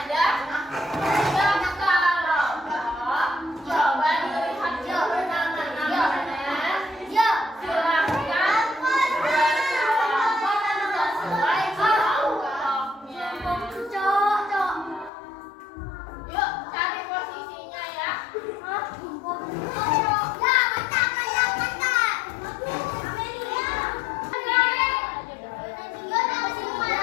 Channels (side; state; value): right; drops out; at 15.1 s